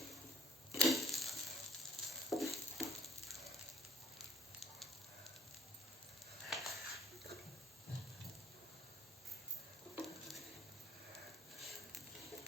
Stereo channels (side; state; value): both; normal; correlation 0.55